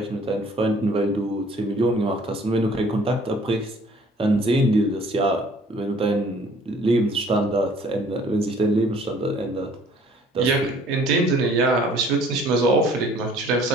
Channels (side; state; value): both; normal; correlation 0.55